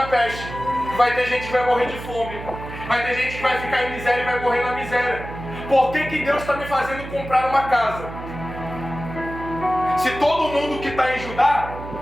peste, que vai ter gente que vai morrer de fome, vai ter gente que vai ficar em miséria e vai morrer na miséria. Por que Deus está me fazendo comprar uma casa? Se todo mundo que está em Judá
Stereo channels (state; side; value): noise; right; hum, 11 dB below the sound